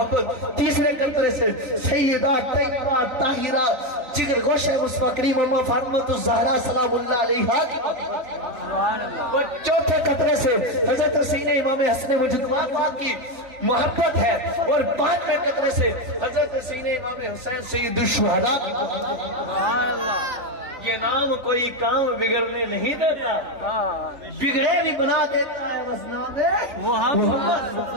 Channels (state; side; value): late; left; 3.9 ms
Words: تیسرے قطرے سے سیدہ طیبہ طاہرہ جگر گوشہ مصطفیٰ کریم اما فاطمہ الزہرا سلام اللہ علیہا کی محبت. اور چوتھے قطرے سے حضرت سیدنا امام حسن مجدد کی محبت ہے. اور 5ویں قطرے سے حضرت سیدنا امام حسین سید الشہداء کی محبت. سبحان اللہ. یہ نام کوئی کام بگڑنے نہیں دیتا, بگڑے بھی بنا دیتا ہے بس نام محمد صلی